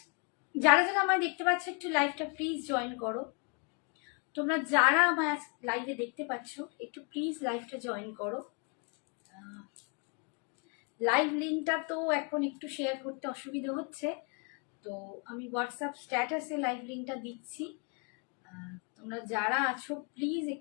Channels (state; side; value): quieter; right; 35.6 dB